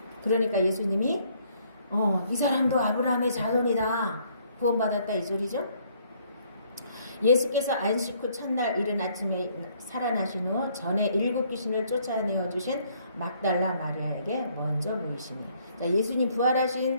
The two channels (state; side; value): inverted; both; correlation -0.65